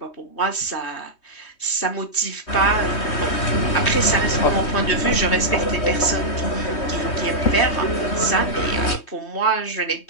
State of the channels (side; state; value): right; late; 3.2 ms